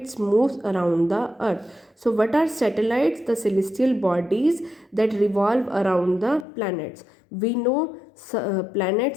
moves around the earth. So what are satellites? The celestial bodies that revolve around the planets. We know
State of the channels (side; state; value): right; drops out; at 6.5 s